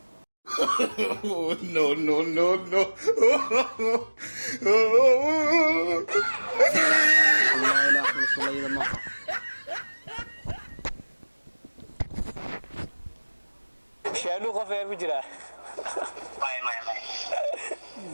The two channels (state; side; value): inverted; both; correlation -1.00